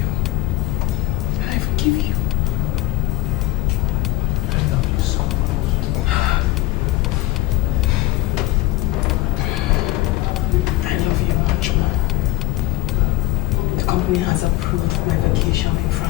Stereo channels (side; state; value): right; quieter; 18.6 dB